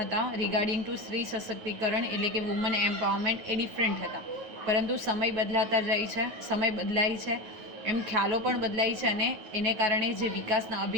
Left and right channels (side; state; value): left; late; 9.3 ms